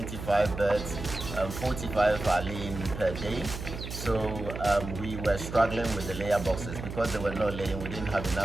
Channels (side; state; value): right; noise; hum, 8 dB below the sound